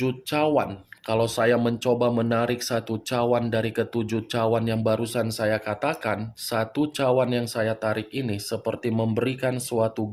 cawan. Kalau saya mencoba menarik satu cawan dari ketujuh cawan yang barusan saya katakan, satu cawan yang saya tarik ini seperti memberikan suatu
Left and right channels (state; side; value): identical; both; correlation 1.00